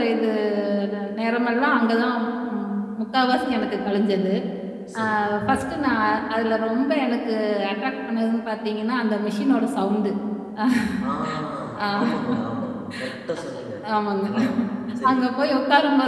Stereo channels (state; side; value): identical; both; correlation 1.00